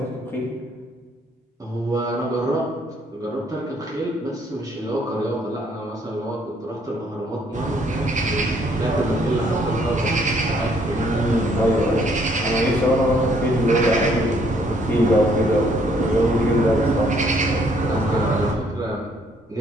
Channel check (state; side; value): normal; both; correlation 0.66